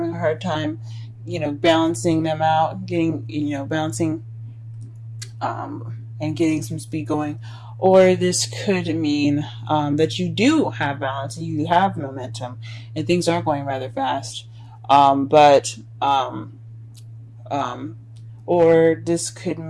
a hard time, balancing them out, getting, balancing, and getting some speed going. Or this could mean that you do have balance, and you have momentum, and things are going rather fast. Or this could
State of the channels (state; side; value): identical; both; correlation 1.00